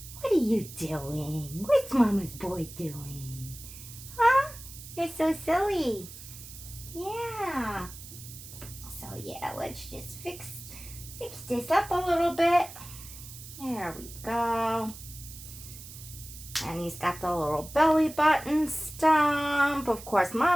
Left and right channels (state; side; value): noise; right; hiss, 15 dB below the sound